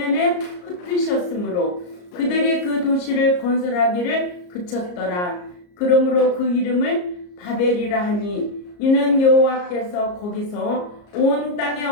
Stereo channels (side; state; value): right; late; 34 ms